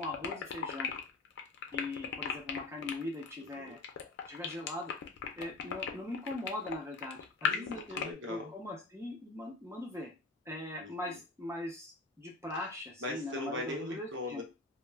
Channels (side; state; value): right; quieter; 3.2 dB